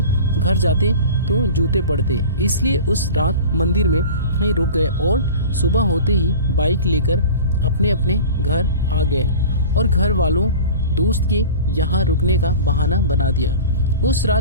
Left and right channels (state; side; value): inverted; both; correlation -0.37